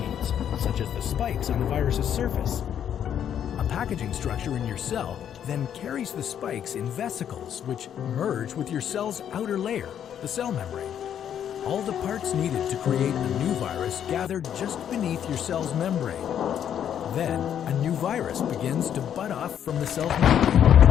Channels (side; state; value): right; quieter; 9.4 dB